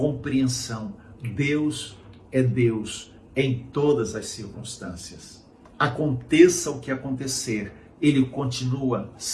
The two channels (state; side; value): identical; both; correlation 1.00